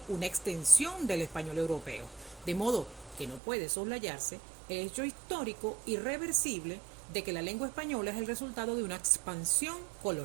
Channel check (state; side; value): drops out; left; at 3.4 s